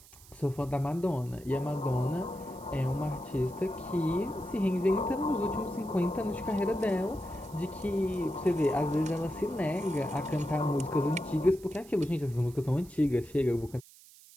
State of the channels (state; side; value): noise; right; hiss, 23 dB below the sound